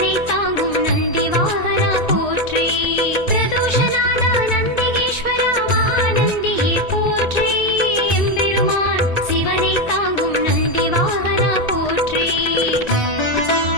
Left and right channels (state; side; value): late; right; 1.9 ms